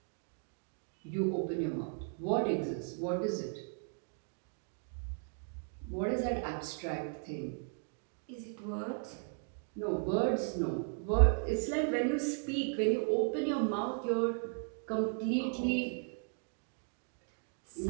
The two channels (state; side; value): silent; left; 54 dB below the other